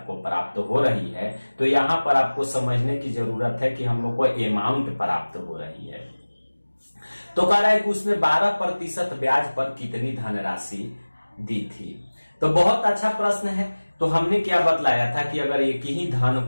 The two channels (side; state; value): both; inverted; correlation -1.00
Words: प्राप्त हो रही है तो यहां पर आपको समझने की जरूरत है कि हम लोग को अमाउंट प्राप्त हो रही है। तो कह रहा है कि उसने 12% ब्याज पर कितनी धनराशि दी थी। तो बहुत अच्छा प्रश्न है। तो हमने क्या बतलाया था कि अगर एक ही धन